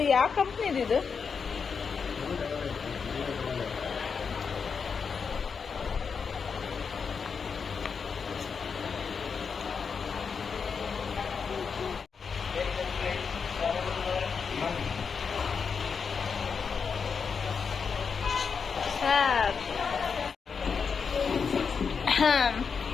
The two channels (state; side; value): quieter; right; 5.8 dB